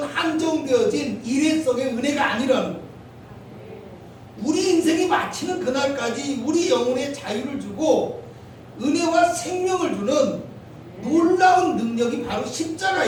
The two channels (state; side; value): identical; both; correlation 1.00